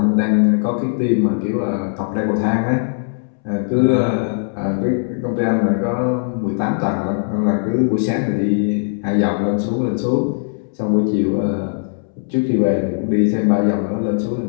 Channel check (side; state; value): right; silent; 67 dB below the other